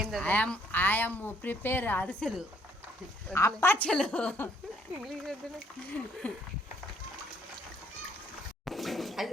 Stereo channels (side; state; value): both; normal; correlation 0.66